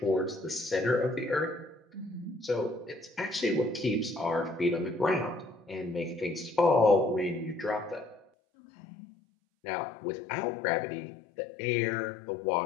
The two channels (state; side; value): drops out; right; at 8.2 s